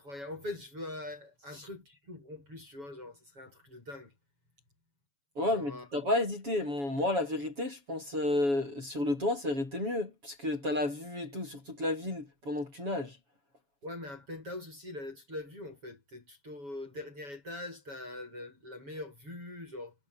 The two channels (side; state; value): left; late; 7.1 ms